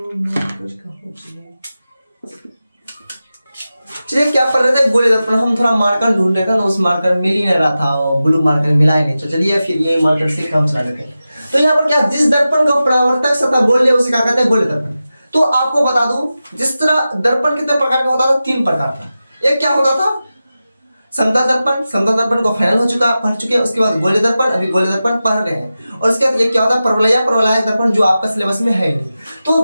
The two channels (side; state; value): both; inverted; correlation -0.93